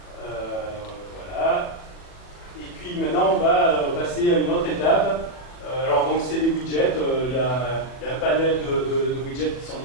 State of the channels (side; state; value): right; late; 40 ms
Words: Voilà. puis maintenant, on va passer à une autre étape. Alors, donc, c'est des widgets. Il y a un panel de widgets qui sont